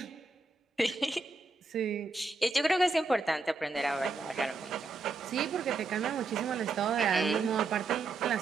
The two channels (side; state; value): left; quieter; 3.8 dB